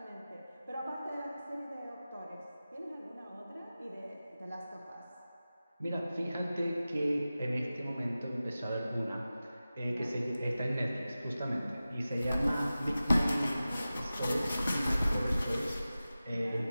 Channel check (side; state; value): both; inverted; correlation -0.96